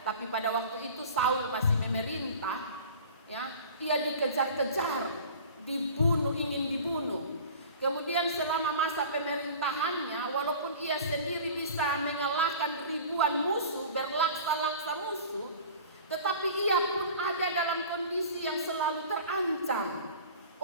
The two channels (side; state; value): both; inverted; correlation -0.41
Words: Tapi pada waktu itu Saul masih memerintah, ya, ia dikejar-kejar, dibunuh, ingin dibunuh. Kemudian selama masa pemerintahannya, walaupun ia sendiri bisa mengalahkan ribuan musuh, berlaksa-laksa musuh, tetapi ia pun ada dalam kondisi yang selalu terancam